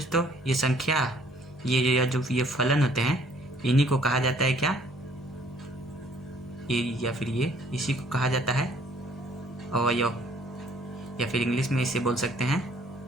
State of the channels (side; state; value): both; normal; correlation 0.60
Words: ये संख्या, ये जो ये फलन होते हैं, इन्हीं को कहा जाता है क्या, ये या फिर ये, इसी को कहा जाता है अवयव, या फिर इंग्लिश में इसे बोल सकते हैं